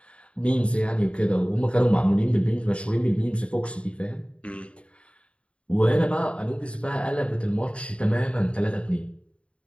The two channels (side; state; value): right; late; 0.060 ms